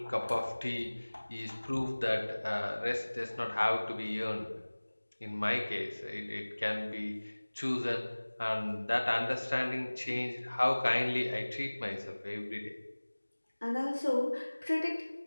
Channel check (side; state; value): both; inverted; correlation -1.00